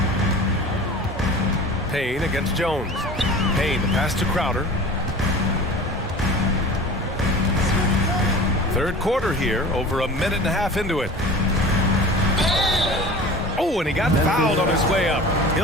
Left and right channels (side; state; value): both; normal; correlation 0.39